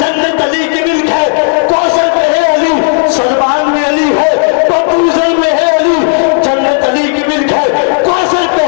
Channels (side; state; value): right; silent; digital silence